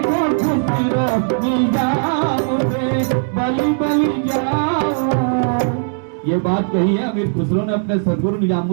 खुसरो निजाम पे बलि बलि जाओ। ये बात कही है अमीर खुसरो ने अपने सदगुरु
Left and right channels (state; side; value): silent; left; digital silence